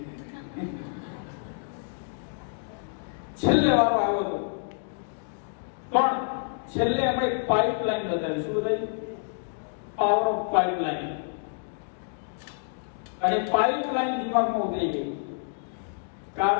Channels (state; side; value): silent; right; digital silence